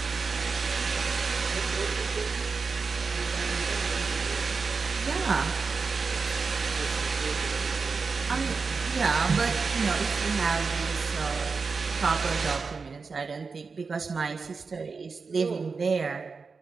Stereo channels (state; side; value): quieter; left; 4.7 dB